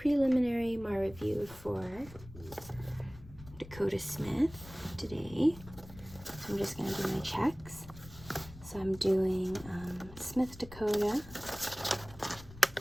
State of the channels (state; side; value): noise; left; rumble, 17 dB below the sound